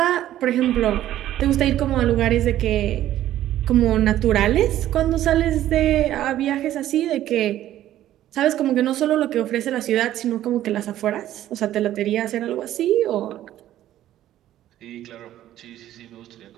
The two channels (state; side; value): quieter; left; 12.9 dB